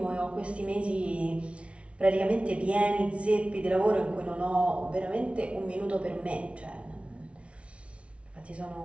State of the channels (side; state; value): left; late; 0.061 ms